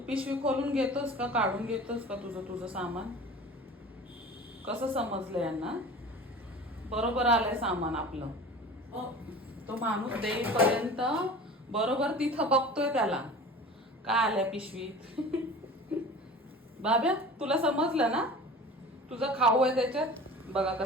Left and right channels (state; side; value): normal; both; correlation 0.39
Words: खोलून घेतोस का, काढून घेतोस का तुझं तुझं सामान? कसं समजलं यांना? बरोबर आलंय सामान आपलं. तो माणूस देईपर्यंत बरोबर तिथं बघतोय त्याला काय आलंय पिशवीत. बाब्या तुला समजलं ना, तुझा खाऊ आहे त्याच्यात. बघा